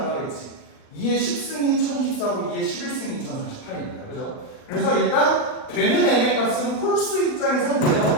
2의 10승이 1024고 2의 11승이 2048이니까. 그죠? 그래서 일단 되는 m의 값은 홀수 입장에선 내가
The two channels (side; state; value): right; late; 39 ms